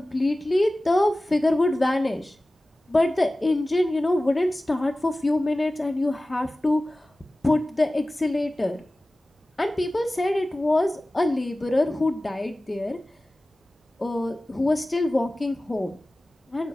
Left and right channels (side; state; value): both; normal; correlation 0.97